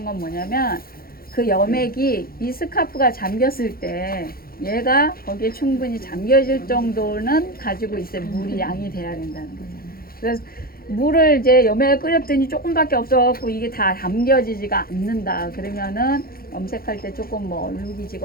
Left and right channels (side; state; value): right; late; 0.43 ms